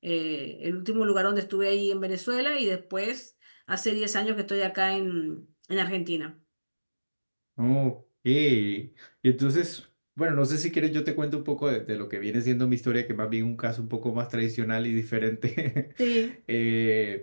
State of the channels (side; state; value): both; inverted; correlation -1.00